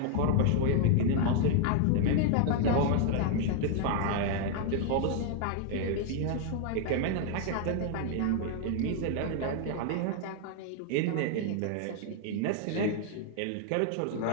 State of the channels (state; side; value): different; both; correlation 0.00